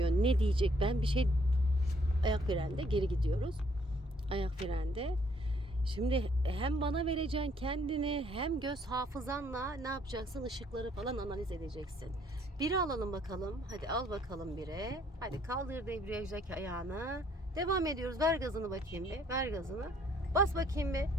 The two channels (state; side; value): normal; both; correlation 0.65